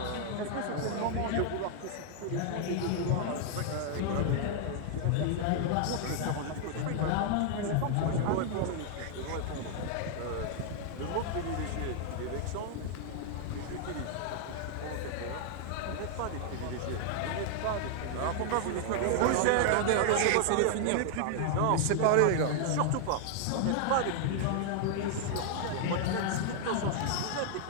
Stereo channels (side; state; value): both; different; correlation 0.00